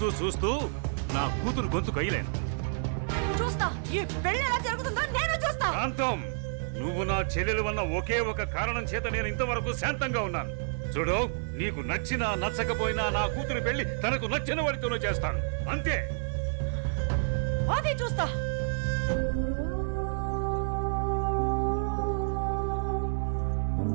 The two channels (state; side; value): silent; left; digital silence